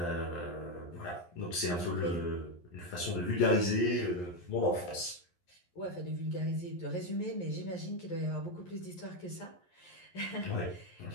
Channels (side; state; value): right; late; 11 ms